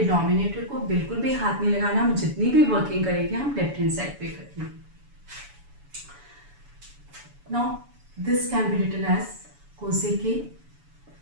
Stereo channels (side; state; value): left; late; 7.0 ms